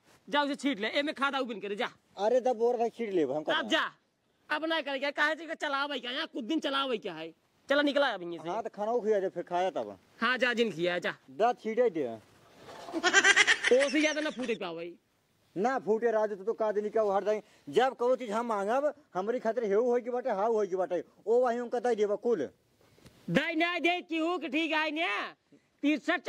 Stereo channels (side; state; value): both; identical; correlation 1.00